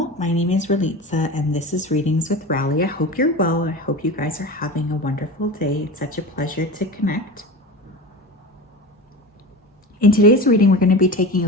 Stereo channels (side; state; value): both; normal; correlation 0.30